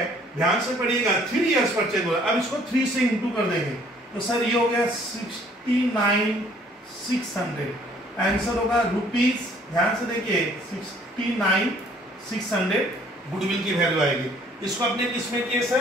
ध्यान से पढ़िएगा, 3 इयर्स परचेज बोला, अब इसको 3 से इंटू कर देंगे, तो सर ये हो गया 69,600, आंसर होगा रुपीज, ध्यान से देखिए 69,600 गुडविल की वैल्यू आएगी। इसको अपने किसमें किए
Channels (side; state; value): both; normal; correlation 0.59